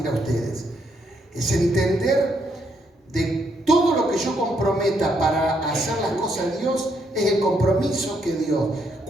a ustedes. Es entender de todo lo que yo comprometa para hacer las cosas de Dios, es el compromiso que Dios.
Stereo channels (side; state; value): both; normal; correlation 0.75